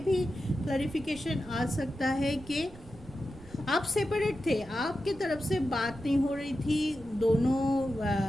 भी क्लैरिफिकेशन आ सकता है कि आप सेपरेट थे, आपके तरफ से बात नहीं हो रही थी, दोनों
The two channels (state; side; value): noise; right; rumble, 19 dB below the sound